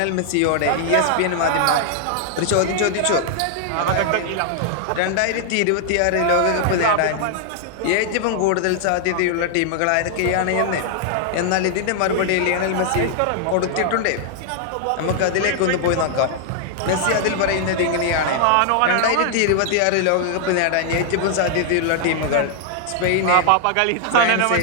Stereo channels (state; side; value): different; both; correlation 0.00